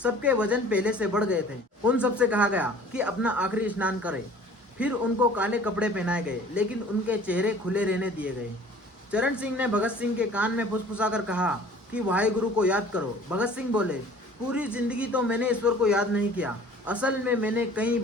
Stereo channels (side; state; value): both; normal; correlation 0.49